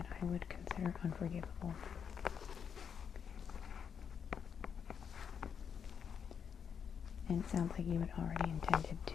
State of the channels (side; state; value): right; quieter; 7.3 dB